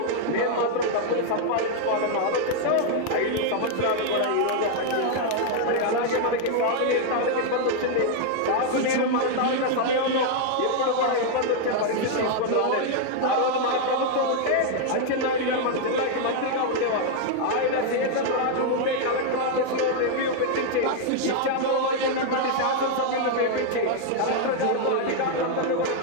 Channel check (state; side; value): different; both; correlation 0.00